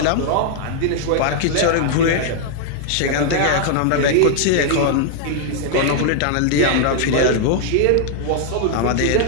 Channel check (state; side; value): different; both; correlation 0.00